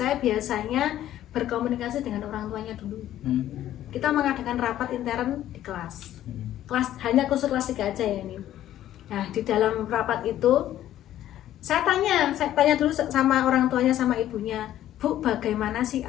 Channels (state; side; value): quieter; right; 12.6 dB